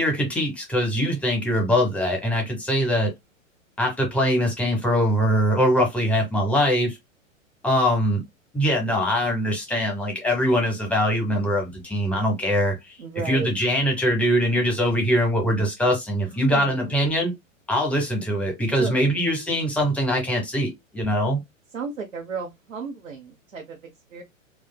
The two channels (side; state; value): both; normal; correlation 0.55